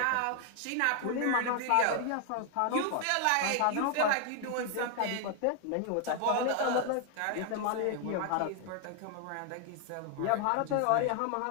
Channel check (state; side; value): different; both; correlation 0.00